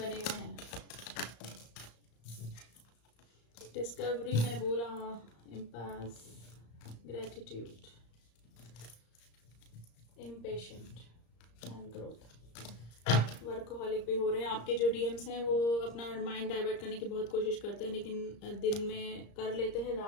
हुए हैं। डिस्कवरी मैंने बोला, impasse, gratitude, impatient and growth. Workaholic भी हो रहे हैं आपके जो डीएम्स हैं, वो अपना माइंड डाइवर्ट करने की बहुत कोशिश करते हैं, लेकिन दिन में कर लेते हैं,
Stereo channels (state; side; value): late; right; 34 ms